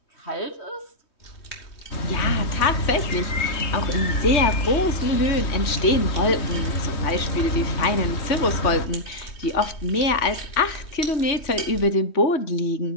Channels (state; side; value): late; right; 3.2 ms